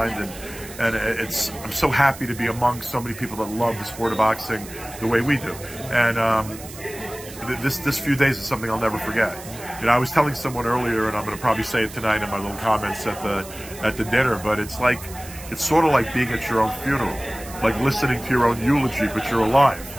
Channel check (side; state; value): right; noise; hiss, 15 dB below the sound